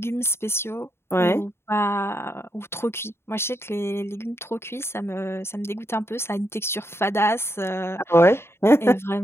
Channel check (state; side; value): late; right; 0.12 ms